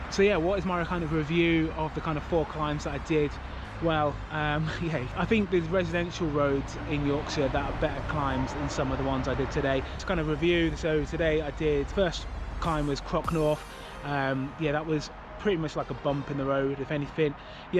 So yeah, what is my kind of review of the kind of 4 climbs that I did? Well, yeah, I think there's residential roads in Yorkshire that are better climbs than some of the ones I did today. Just kind of review. So today I did, first climb was Crocknorth. Yeah, that was pretty much like a bump in the road, if anything.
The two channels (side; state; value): both; identical; correlation 1.00